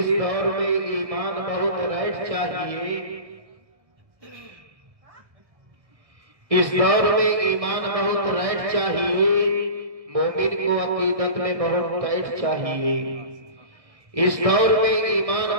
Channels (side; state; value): left; late; 1.6 ms